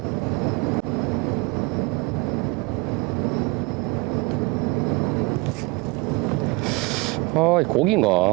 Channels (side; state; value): left; quieter; 25.8 dB